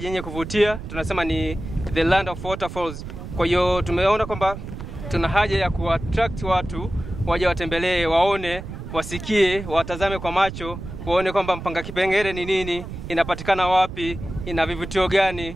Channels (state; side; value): noise; right; rumble, 10 dB below the sound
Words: yenye kuvutia. Tunasema ni the land of waterfalls. Kwa hiyo tumeona kwamba tuna haja ya kuattract watu waje watembelee, waone, wasikie, watazame kwa macho, waone kwamba Mpanga Kipengere ni nini, inapatikana wapi, ina vivutio gani.